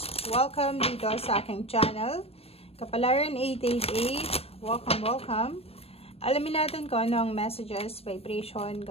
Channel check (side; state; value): right; late; 0.28 ms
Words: Welcome dito sa aking channel. Kapalaran 888, welcome. Alamin natin kung ano ang messages, vibration,